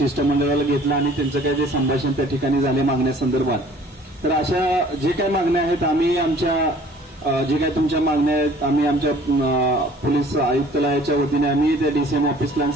घेतलं आणि त्यांचं काही जे संभाषण त्या ठिकाणी झाले मागण्यासंदर्भात। तर अशा जे काही मागण्या आहेत आम्ही आमच्या जे काही तुमच्या मागण्या आहेत आम्ही आमच्या पोलीस आयुक्तालयाच्या वतीने आम्ही त्या डीसीएम ऑफिसला आणि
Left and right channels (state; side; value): normal; both; correlation 0.52